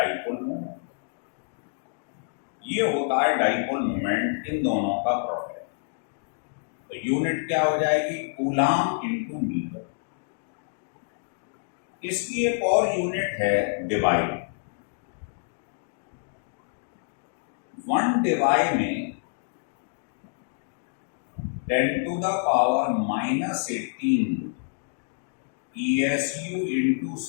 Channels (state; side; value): silent; right; digital silence